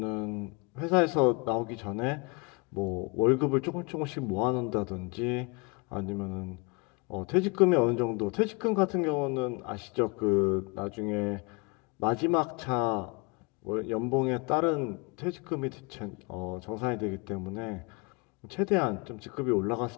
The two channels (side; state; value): right; quieter; 30.6 dB